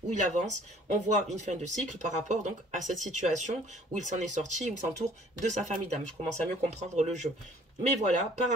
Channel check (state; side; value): normal; both; correlation 0.55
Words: où il avance. On voit une fin de cycle par rapport donc à cette situation où il s'en est sorti, où il s'entoure de sa famille d'âme. Je commence à mieux comprendre le jeu. Mais voilà, par